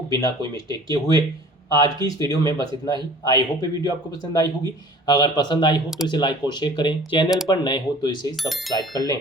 बिना कोई मिस्टेक किए हुए। आज की इस वीडियो में बस इतना ही। आई होप ये वीडियो आपको पसंद आई होगी। अगर पसंद आई हो तो इसे लाइक और शेयर करें, चैनल पर नए हो तो इसे सब्सक्राइब कर लें।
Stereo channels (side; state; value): both; normal; correlation 0.46